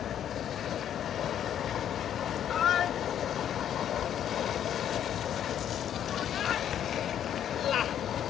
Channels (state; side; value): quieter; right; 10.0 dB